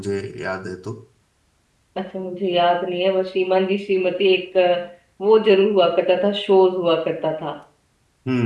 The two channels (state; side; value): identical; both; correlation 1.00